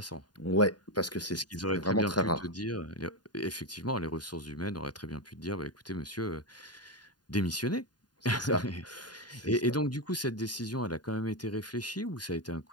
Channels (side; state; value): right; late; 0.70 ms